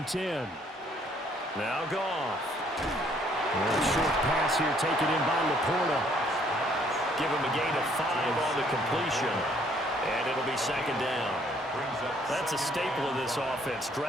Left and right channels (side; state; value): both; normal; correlation 0.64